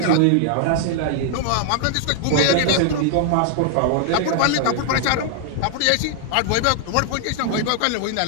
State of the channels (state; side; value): different; both; correlation 0.00